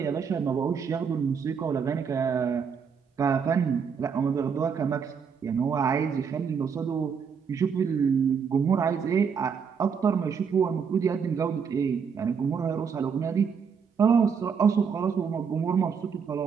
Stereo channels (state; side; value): quieter; left; 6.5 dB